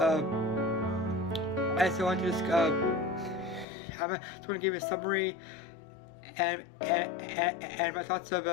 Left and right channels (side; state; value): right; drops out; at 3.7 s